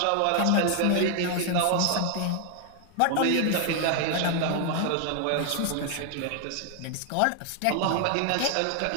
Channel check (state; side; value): different; both; correlation 0.00